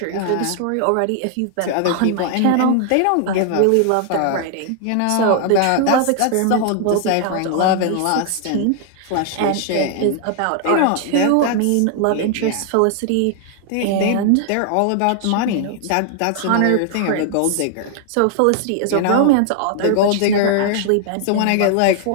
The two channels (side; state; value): both; different; correlation 0.00